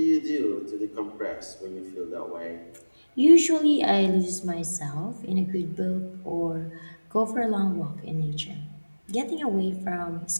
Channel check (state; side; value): inverted; both; correlation -1.00